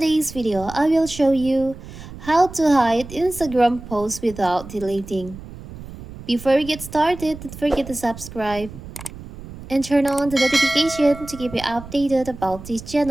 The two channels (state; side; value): noise; right; rumble, 14 dB below the sound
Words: video, I will show you how to hide Instagram posts without deleting. Before we get started, don't forget to subscribe and turn on the notification to keep you updated about this